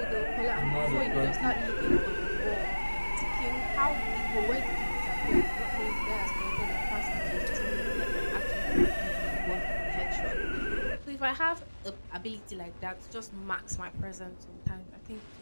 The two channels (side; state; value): both; inverted; correlation -1.00